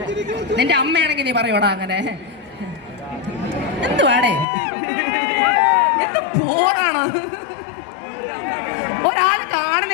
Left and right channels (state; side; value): drops out; right; at 4.5 s